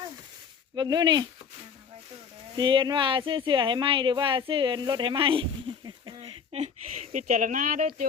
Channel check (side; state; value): right; quieter; 6.5 dB